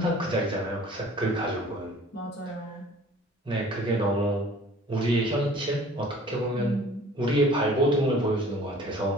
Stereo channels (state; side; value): normal; both; correlation 0.49